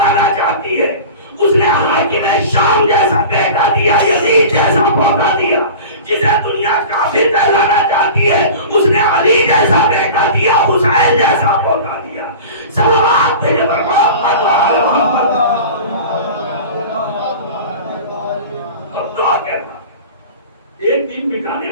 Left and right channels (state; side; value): inverted; both; correlation -0.36